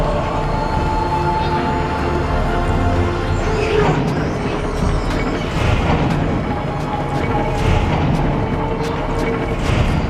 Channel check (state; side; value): identical; both; correlation 1.00